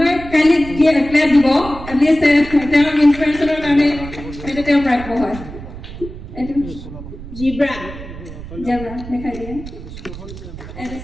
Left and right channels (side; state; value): right; noise; rumble, 12 dB below the sound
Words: কালি ক্লাব দিব এটলিষ্ট তেওঁৰ ইনস্পিৰেচনৰ কাৰণে এটা তেওঁ প্ৰাপ্য হয় এটা জিব্ৰা দেখাই দিয়ে এটা